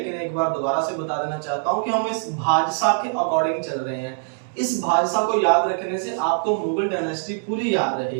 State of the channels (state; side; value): silent; left; digital silence